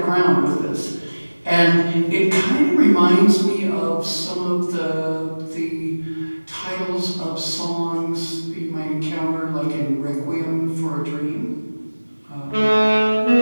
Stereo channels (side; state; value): both; inverted; correlation -1.00